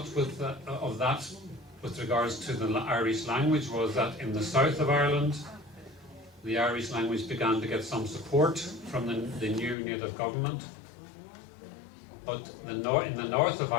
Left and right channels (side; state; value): right; drops out; at 9.8 s